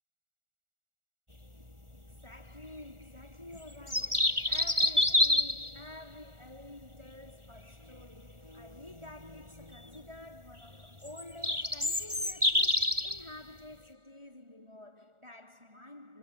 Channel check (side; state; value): left; late; 1.4 ms